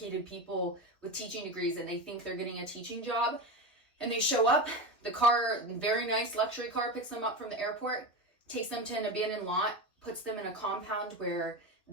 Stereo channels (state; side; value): normal; both; correlation 0.20